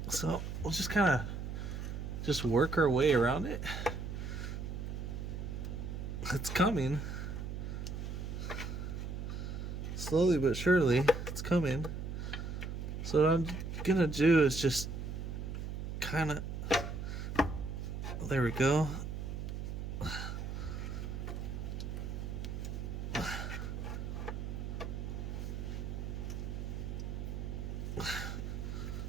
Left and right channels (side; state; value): right; noise; hum, 5 dB below the sound